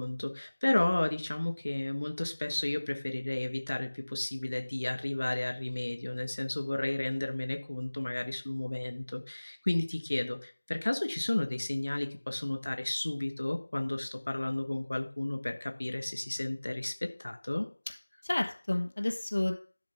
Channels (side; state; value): both; inverted; correlation -1.00